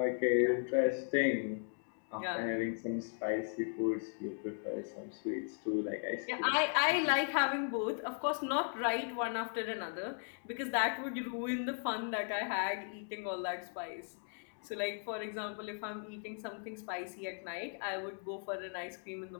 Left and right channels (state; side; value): silent; right; 53 dB below the other